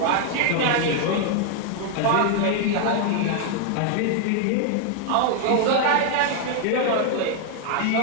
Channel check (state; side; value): different; both; correlation 0.00